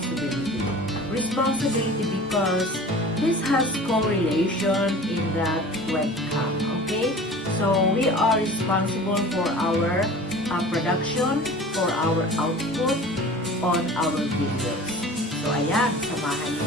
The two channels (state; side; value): normal; both; correlation 0.41